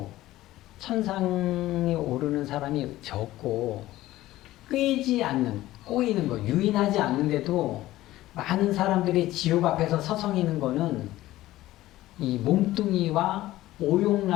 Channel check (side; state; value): right; quieter; 16.0 dB